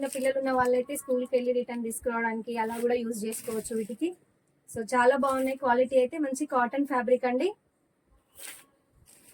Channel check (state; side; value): identical; both; correlation 1.00